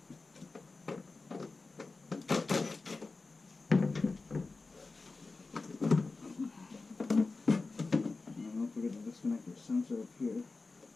And don't forget to disconnect your sensor up here.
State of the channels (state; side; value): quieter; right; 3.8 dB